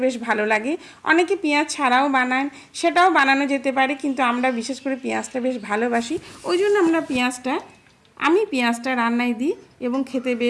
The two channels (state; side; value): identical; both; correlation 1.00